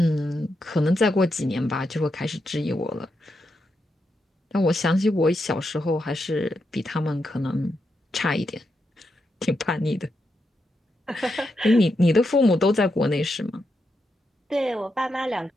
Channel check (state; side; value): normal; both; correlation 0.84